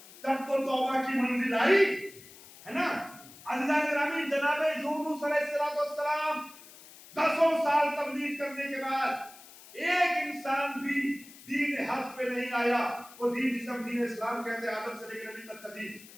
تب تو توبہ کی منزل آئی ہے نا. اللہ گرامی جناب یونس علیہ السلام 10 سال تبلیغ کرنے کے بعد ایک انسان بھی دین حق پہ نہیں آیا. وہ دین جسے ہم دین اسلام کہتے ہیں, آدم سے لے کر نبی تک کا دین,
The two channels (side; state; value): left; noise; hiss, 20 dB below the sound